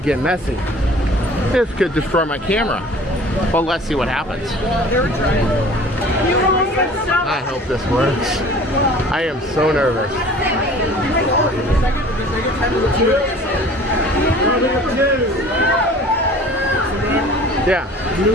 get messy. This could destroy my camera. But let's see what happens. I hope this works. I am so nervous. Yeah.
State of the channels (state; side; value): normal; both; correlation 0.47